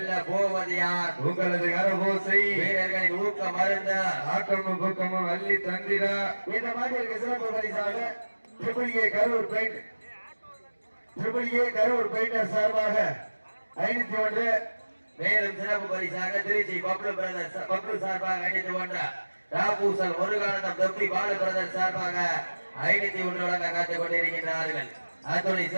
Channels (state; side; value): inverted; both; correlation -1.00